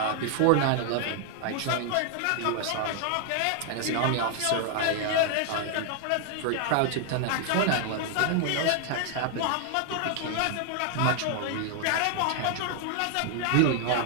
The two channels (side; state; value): both; different; correlation 0.00